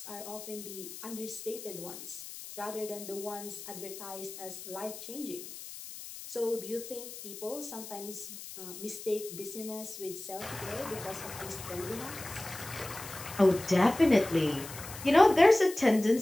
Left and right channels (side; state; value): left; noise; hiss, 12 dB below the sound